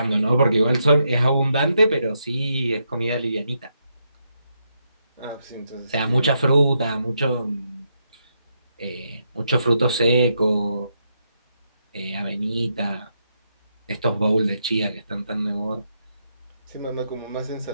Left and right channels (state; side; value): inverted; both; correlation -0.80